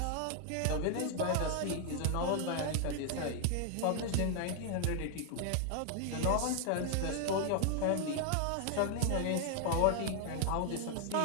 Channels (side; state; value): both; different; correlation 0.00